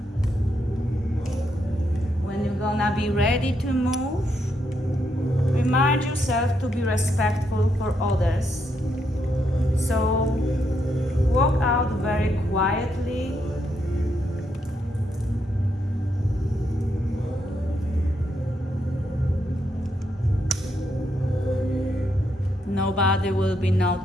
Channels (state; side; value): normal; both; correlation 0.79